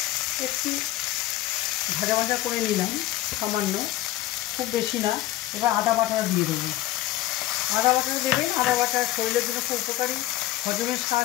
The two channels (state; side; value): quieter; right; 15.0 dB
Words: একটু ভাজা ভাজা করে নিলাম, সামান্য, খুব বেশি না। এবার আদা বাটাটা দিয়ে দেবো। আদা বাটাটা দেবেন। আদা বাটা শরীরের জন্য খুব উপকারী, হজমে